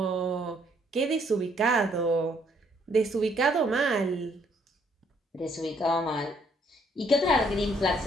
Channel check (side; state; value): both; normal; correlation 0.67